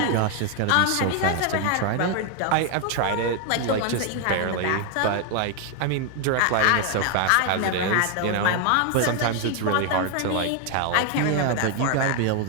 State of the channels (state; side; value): different; both; correlation 0.01